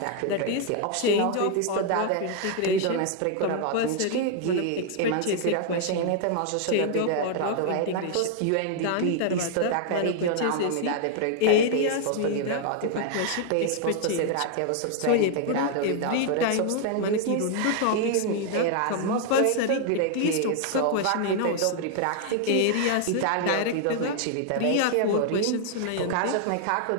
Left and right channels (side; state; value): both; different; correlation 0.00